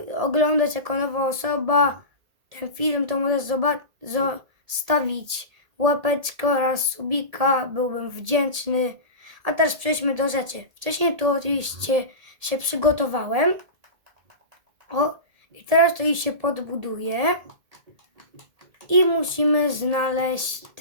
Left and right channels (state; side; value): late; left; 1.7 ms